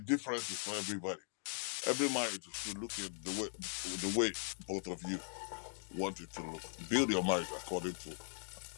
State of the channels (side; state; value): right; silent; digital silence